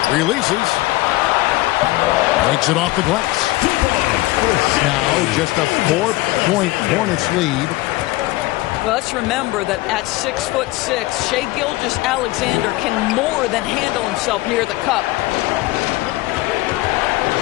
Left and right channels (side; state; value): right; quieter; 19.7 dB